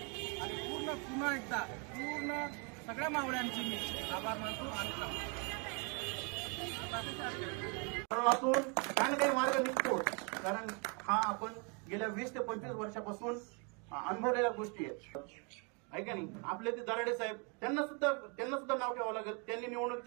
आणि पुन्हा एकदा सगळ्या मावळ्यांचे मी आभार मानतो आणि काही ना काही मार्ग निघतो. कारण हा आपण गेल्या 20 ते 25 वर्षापासून अनुभवलेल्या गोष्टी आहेत, आहे का नाही. आपले ते दराडे साहेब त्यांना सुद्धा नाव ठेवावं लागेल. त्यांनी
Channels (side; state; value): left; quieter; 34.7 dB